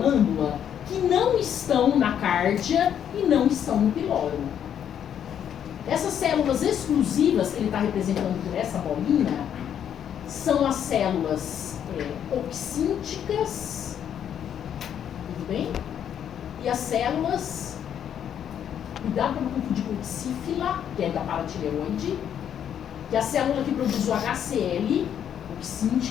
que não estão na cárdia e não estão no piloro. Essas células exclusivas que ele está representando por essa bolinha são as células oxínticas, tudo bem? E as células, cuidado para não confundir com oxífila, que é da paratireoide, que é a célula que produz o HCl,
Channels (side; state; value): right; quieter; 9.2 dB